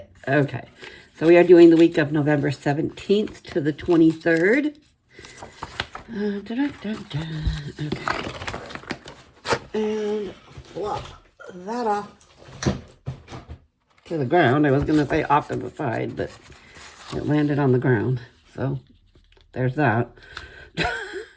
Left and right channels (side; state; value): both; identical; correlation 1.00